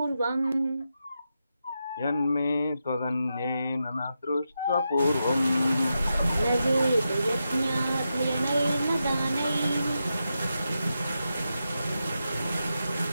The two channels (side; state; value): both; inverted; correlation -0.87